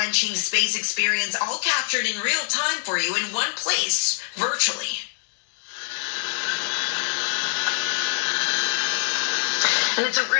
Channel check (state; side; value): silent; right; 55 dB below the other